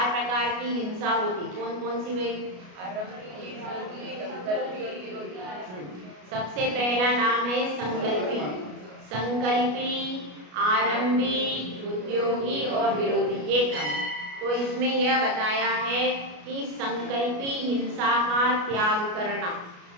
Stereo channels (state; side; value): late; left; 33 ms